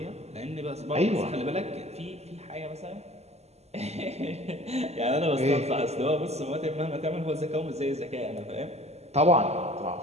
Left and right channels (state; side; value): late; left; 0.31 ms